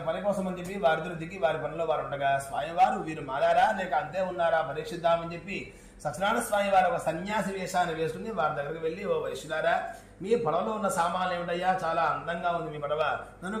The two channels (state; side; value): identical; both; correlation 1.00